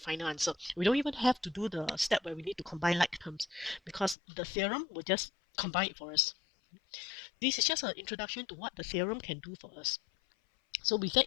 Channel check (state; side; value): drops out; right; at 4.2 s